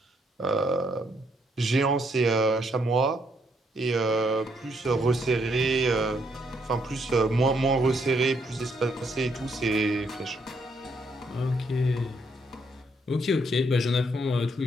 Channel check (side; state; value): both; normal; correlation 0.73